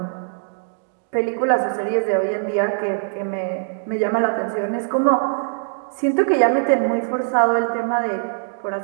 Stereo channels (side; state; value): left; silent; digital silence